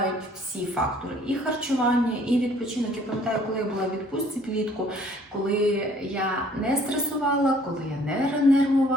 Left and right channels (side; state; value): both; normal; correlation 0.58